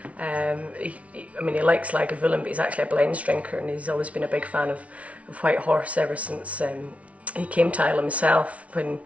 He likes Lagavulin, but he's actually a blends drinker, and he's always been a big fan of White Horse ever since he came to Islay himself. When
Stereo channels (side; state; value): left; late; 0.065 ms